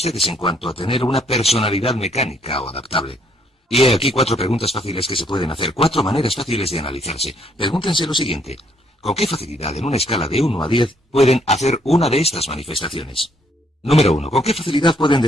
en cuanto a tener una personalidad mecánica o adaptable. Y he aquí 4 preguntas fáciles que se pueden hacer, 4 maneras fáciles de analizarse. Pregúntense lo siguiente: ¿con qué facilidad en una escala de 1 a 10 pueden hacer una de estas manifestaciones? Número 1. ¿Con qué facilidad pueden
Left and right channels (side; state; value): both; normal; correlation 0.68